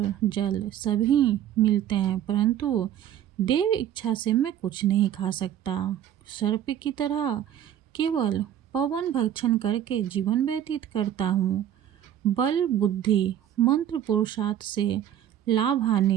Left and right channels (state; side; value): quieter; left; 10.7 dB